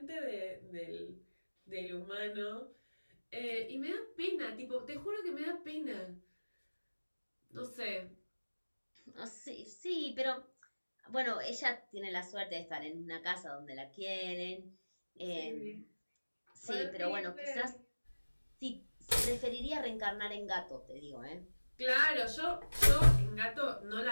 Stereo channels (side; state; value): both; inverted; correlation -1.00